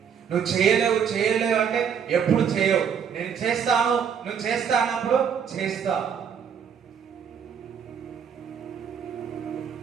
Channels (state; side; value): quieter; left; 7.5 dB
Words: నువ్వు చేయలేవు అంటే ఎప్పుడు చేయవు. నేను చేస్తాను, నువ్వు చేస్తానప్పుడు చేస్తావు.